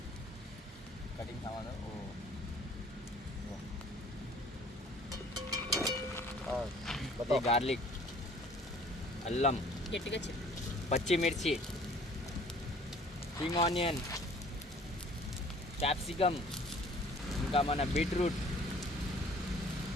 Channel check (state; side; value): normal; both; correlation 0.53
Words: कटिंग सामान है. बताओ. गार्लिक, అల్లం, గట్టిగా చెప్పు. పచ్చిమిర్చి, స్ప్రింగ్ ఆనియన్, క్యాప్సికమ్, ఇంకా మన బీట్రూట్,